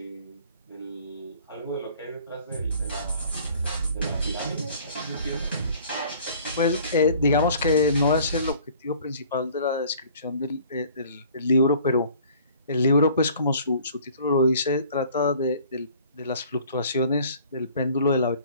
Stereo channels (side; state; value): both; inverted; correlation -0.52